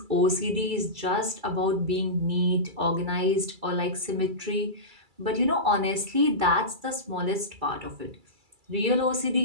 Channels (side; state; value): left; late; 2.3 ms